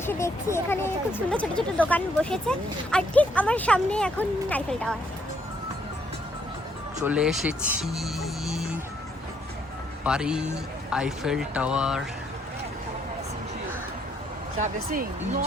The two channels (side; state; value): both; normal; correlation 0.70